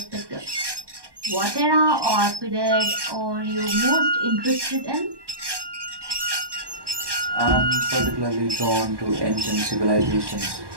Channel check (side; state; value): left; late; 1.1 ms